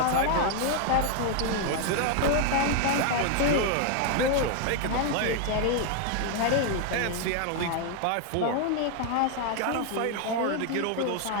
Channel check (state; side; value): different; both; correlation 0.00